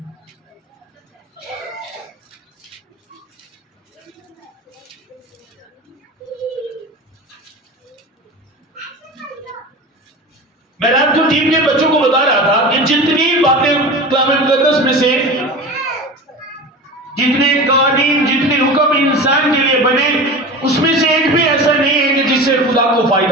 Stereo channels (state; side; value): normal; both; correlation 0.31